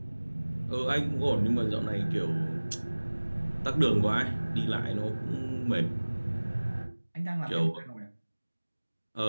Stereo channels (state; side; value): inverted; both; correlation -1.00